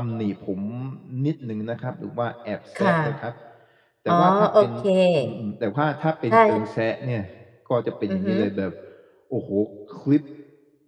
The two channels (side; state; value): both; identical; correlation 1.00